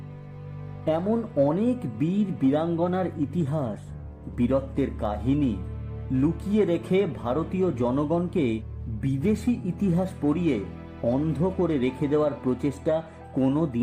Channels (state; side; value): identical; both; correlation 1.00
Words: এমন অনেক বীর বীরাঙ্গনার ইতিহাস, বীরত্বের কাহিনী লুকিয়ে রেখে ভারতীয় জনগণকে বিদেশি ইতিহাস পড়িয়ে অন্ধ করে রেখে দেওয়ার প্রচেষ্টা কোনো